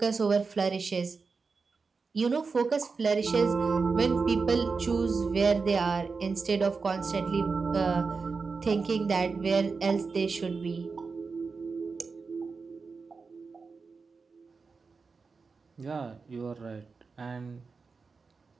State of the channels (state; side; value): quieter; left; 4.7 dB